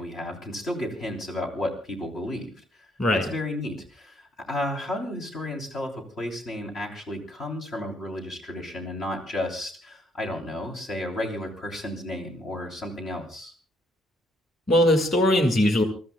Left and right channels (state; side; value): normal; both; correlation 0.69